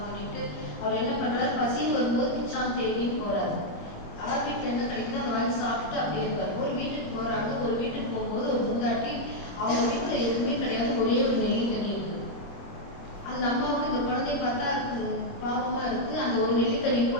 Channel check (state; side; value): late; right; 25 ms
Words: பண்ணிட்டு அவர் என்ன பண்றாரு, பசின்னு வரும்போது பிச்சான் தேடின்னு போறாரு. யார் வீட்டில் என்ன கிடைக்குதோ அதை வாங்கி சாப்பிட்டு அப்படியே இருப்பாரு. ஒரு வீட்டுக்கு போறாங்க, ஒரு வீட்டுக்கு போகும்போது ஒரு முந்தாட்டி அவங்க வீட்டில் எதுவுமே கிடையாது, ஒரே ஒரு நெல்லிக்கனி இருக்கு. அந்த அம்மாவுக்கு இந்த குழந்தைய பார்த்தா பாவமா இருக்கு. அந்த ஒரு நெல்லிக்கனி